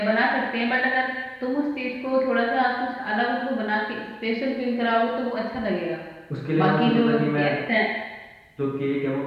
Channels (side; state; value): both; identical; correlation 1.00